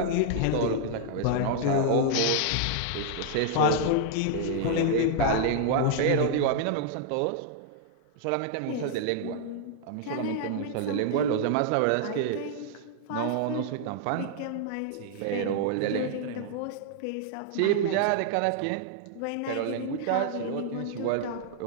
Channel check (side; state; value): both; different; correlation -0.01